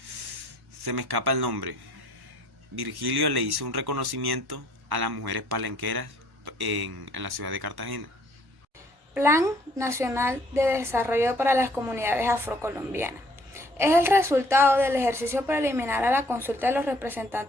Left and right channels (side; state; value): both; normal; correlation 0.61